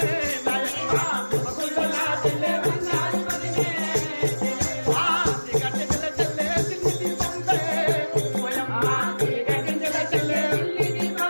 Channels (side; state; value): both; inverted; correlation -1.00